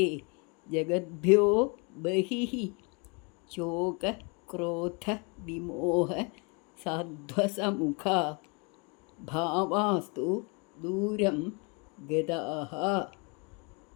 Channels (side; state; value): right; quieter; 32.4 dB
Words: ജഗദ്ഭ്യോ ബഹിഃ. ശോക ക്രോധ വിമോഹ സാധ്വസമുഖ ഭാവാസ്തു ദൂരം ഗതാഃ.